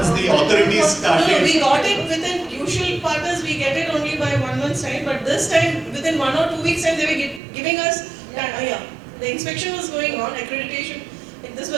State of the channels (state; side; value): drops out; left; at 7.4 s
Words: the authorities No, started. we got it within usual partners. We get it only by 1 month's time. But this time, within 1 or 2 weeks' time, they were giving us. The inspection was going on. Accreditation. This